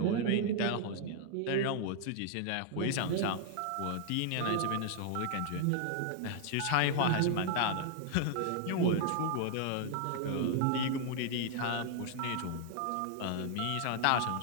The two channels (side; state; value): both; different; correlation -0.01